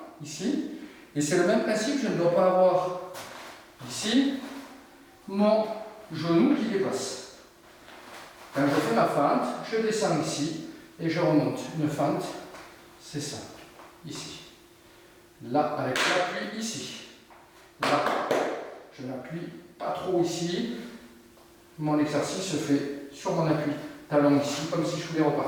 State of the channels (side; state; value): both; identical; correlation 1.00